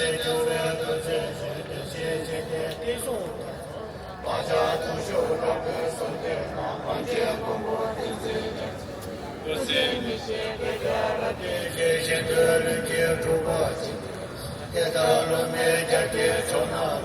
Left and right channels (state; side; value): identical; both; correlation 1.00